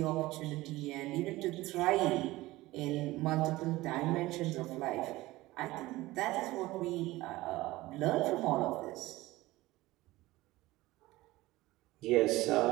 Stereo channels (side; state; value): left; quieter; 18.7 dB